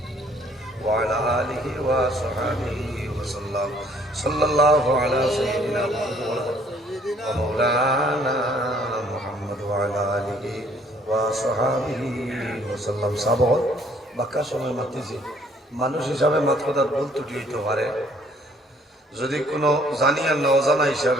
وعلى آله وصحبه وسلم صلى الله على سيدنا ومولانا محمد وعلى آله وصحبه وسلم সাবর বাক্কা সময় মাতিছি মানুষ হিসাবে মাত কথা ভুল ত্রুটি হইতে পারে যদি কোনো জানি আর না অজানা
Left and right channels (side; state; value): both; normal; correlation 0.61